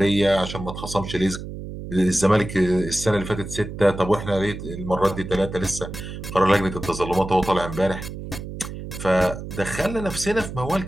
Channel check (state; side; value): noise; right; hum, 9 dB below the sound